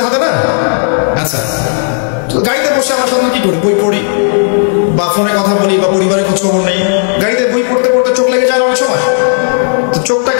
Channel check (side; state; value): right; silent; digital silence